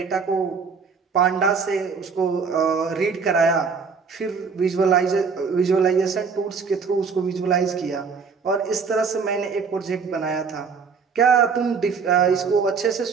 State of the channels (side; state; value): left; quieter; 5.4 dB